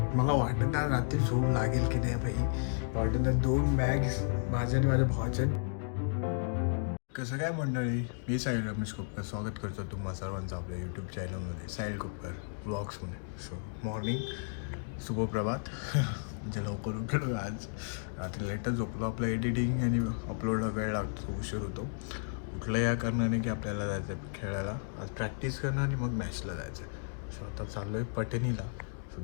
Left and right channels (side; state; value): right; silent; digital silence